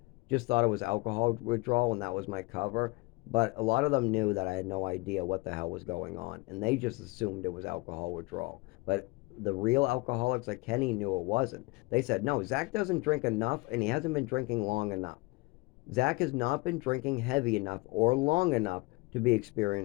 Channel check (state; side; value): quieter; right; 24.7 dB